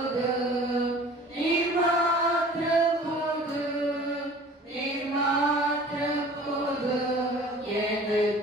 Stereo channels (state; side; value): normal; both; correlation 0.46